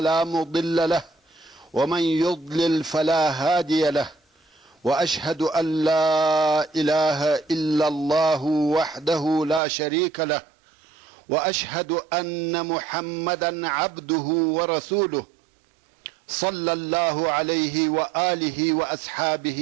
مضل له ومن يضلل فلا هادي له، وأشهد أن لا إله إلا الله وحده لا شريك له، وأشهد أن محمدا عبده ورسوله صلى الله عليه وآله وأصحابه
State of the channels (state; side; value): drops out; left; at 9.6 s